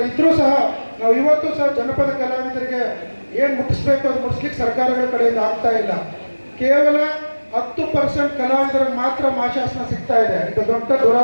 ಇದ್ರೂ ಸಹ ನಾವು ಇವತ್ತು ಸಹ ಜನಪದ ಕಲಾವಿದರಿಗೆ ಏನು ಮುಟ್ಟಿಸ್ಬೇಕು ಅದು ಮುಟ್ಟಿಸ್ಲಿಕ್ಕೆ ಸರ್ಕಾರಗಳ ಕಡೆಯಿಂದ ಆಗ್ತಾ ಇಲ್ಲ. ಕೇವಲ 10% ಕಲಾವಿದರಿಗೆ ಮಾತ್ರ ಮಾಶಾಸನ ಸಿಗ್ತಾ ಇದೆ. ಇದು ದೊಡ್ಡ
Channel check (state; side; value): inverted; both; correlation -1.00